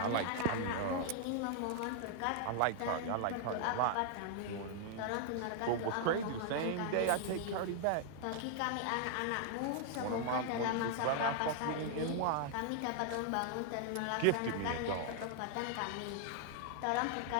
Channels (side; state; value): both; different; correlation 0.00